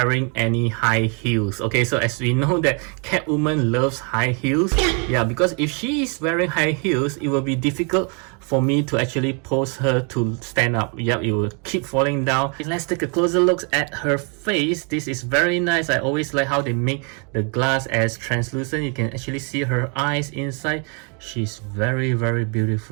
any high heels. Okay, so as we know that Catwoman loves high heels. Yeah, because if she is wearing high heels, it will be difficult for me to actually pose her to stand up. Yep, it will keep falling down. Let's take a closer look at her face. This is very nice. I always like how they make the glass as translucent. You can actually see her eyes inside. She's very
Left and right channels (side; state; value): left; quieter; 36.6 dB